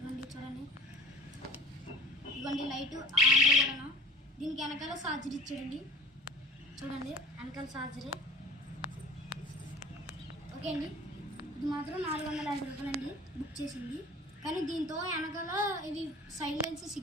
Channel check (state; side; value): normal; both; correlation 0.44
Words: చూడండి ఇదిగోండి లైట్ ఆంధ్ర కూడా. దీనికి వెనకాల ఛార్జర్ ఇచ్చాడండి. చూడండి వెనకాల ఛార్జరే. ఓకే అండి, ఇది మాత్రం 450 రూపాయలండి బుక్ చేసింది. కానీ దీంతో వెనకాల ఇవి సైలెన్స్